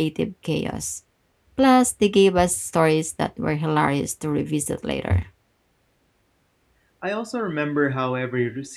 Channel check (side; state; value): both; identical; correlation 1.00